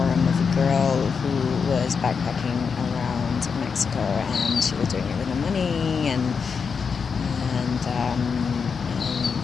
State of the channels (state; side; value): quieter; right; 5.8 dB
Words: of a girl who was backpacking around Mexico, and she was doing it with no money, and